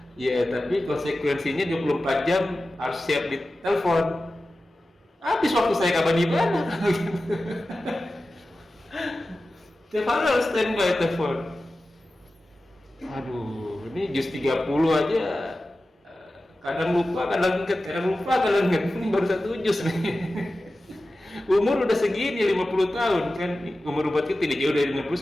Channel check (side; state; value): both; normal; correlation 0.94